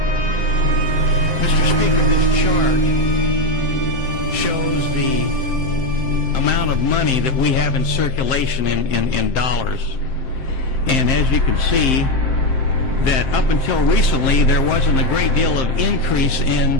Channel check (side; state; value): right; late; 7.6 ms